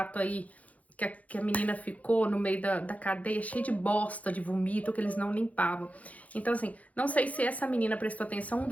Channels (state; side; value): late; right; 0.069 ms